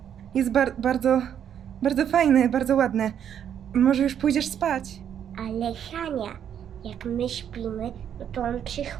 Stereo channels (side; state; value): left; quieter; 9.1 dB